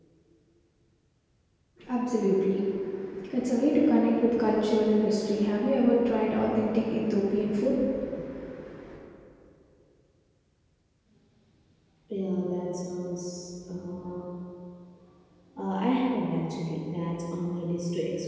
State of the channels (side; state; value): both; identical; correlation 1.00